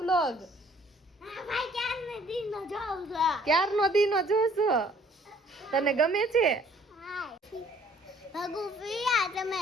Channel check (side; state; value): both; normal; correlation 0.58